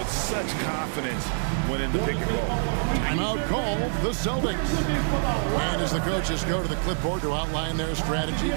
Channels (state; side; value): silent; left; digital silence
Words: such confidence when in the pick and roll. Timeout called the Celtics. And as the coaches go to the clipboard to outline their strategy